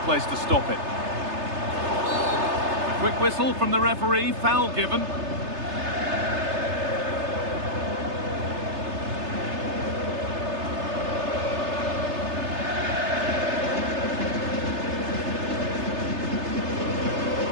place to stop it. A quick whistle from the referee, foul given.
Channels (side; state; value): left; late; 3.3 ms